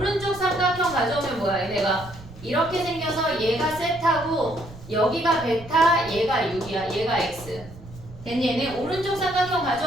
삼각형 가져오면 뭐야? 얘네가 이렇게 생겨서 얘가 세타고 여기가 베타 얘가 6이야. 얘가 x. 됐니? 얘네 오른쪽 삼각형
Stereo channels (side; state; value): right; noise; rumble, 17 dB below the sound